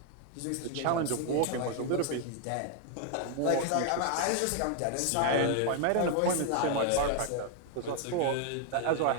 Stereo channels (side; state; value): both; different; correlation 0.00